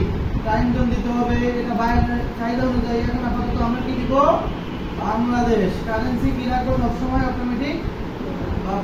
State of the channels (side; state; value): both; identical; correlation 1.00